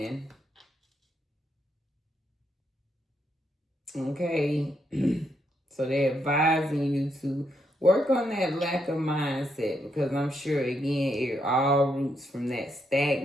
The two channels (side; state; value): both; normal; correlation 0.78